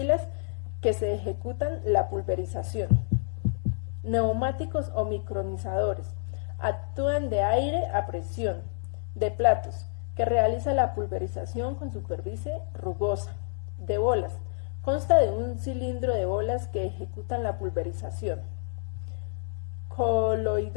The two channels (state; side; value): silent; right; 59 dB below the other